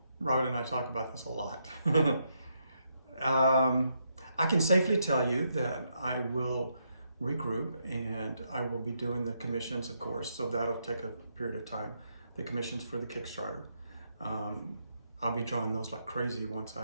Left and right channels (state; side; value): inverted; both; correlation -0.78